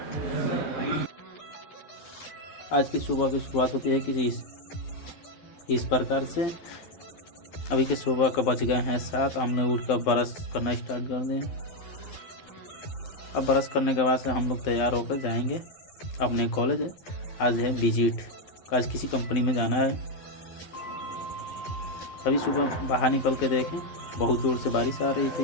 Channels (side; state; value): right; late; 12 ms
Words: आज की सुबह की शुरुआत होती है किसी इस प्रकार से। अभी के सुबह का बज गए हैं 7। हमने उठकर ब्रश करना स्टार्ट कर दिया। अब ब्रश करने के बाद से हम लोग तैयार होकर जाएंगे अपने कॉलेज। आज है विजिट, आज किसी कंपनी में जाना है। अभी सुबह बाहर निकल के देखें, बहुत जोर से बारिश आ रही